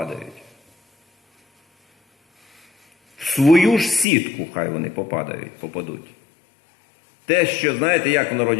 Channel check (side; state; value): right; drops out; at 4.0 s